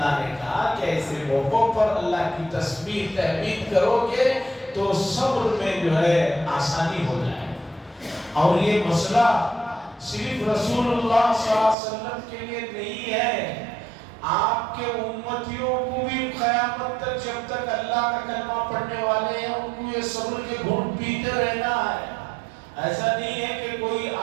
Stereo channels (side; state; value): left; drops out; at 11.8 s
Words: نے کہا کہ ایسے موقعوں پر اللہ کی تسبیح تحمید کرو گے تو صبر میں جو ہے آسانی ہو جائے۔ اور یہ مسئلہ صرف رسول اللہ صلی اللہ علیہ وسلم کے لیے نہیں ہے، آپ کے امتیوں کو بھی قیامت تک جب تک اللہ کا کلمہ پڑھنے والے ہیں ان کو یہ صبر کے گھونٹ پیتے رہنا ہے۔ ایسا نہیں ہے کہ کوئی